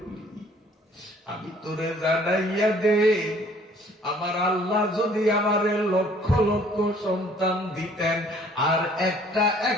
আমি তোরে জানাইয়া দে, আমার আল্লাহ যদি আমারে লক্ষ লক্ষ সন্তান দিতেন, আর একটা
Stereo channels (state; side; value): normal; both; correlation 0.57